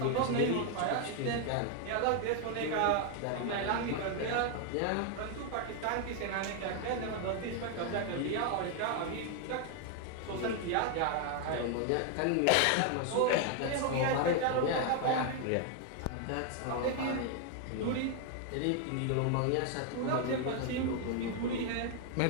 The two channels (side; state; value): both; different; correlation 0.00